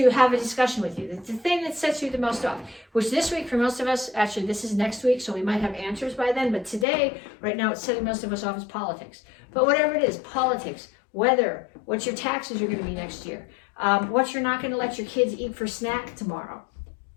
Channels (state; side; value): drops out; right; at 6.9 s